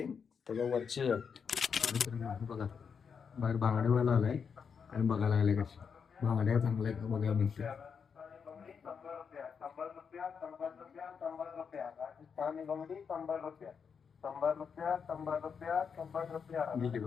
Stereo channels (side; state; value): right; quieter; 6.4 dB